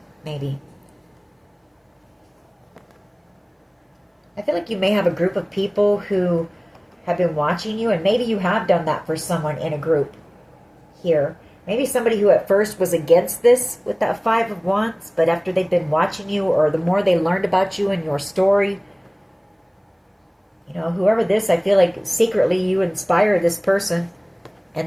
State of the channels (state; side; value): identical; both; correlation 1.00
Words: maybe. I feel like you may have a group of people who have been watching you, and maybe you have done that for someone in a group here. Maybe somebody who at first was against this with that Five of Wands, but after they've been watching you, or the more they learned about you and your story, you know, whoever this, I feel like secretly you inspire this person,